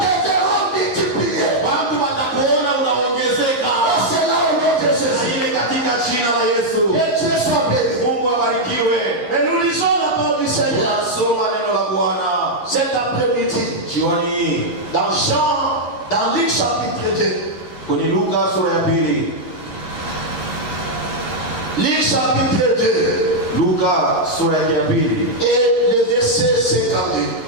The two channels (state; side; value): late; right; 11 ms